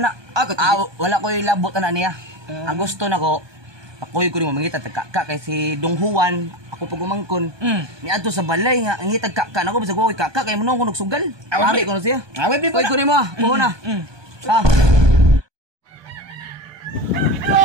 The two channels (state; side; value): late; left; 1.2 ms